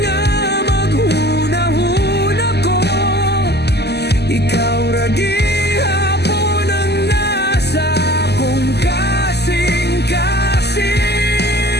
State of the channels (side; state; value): right; late; 0.49 ms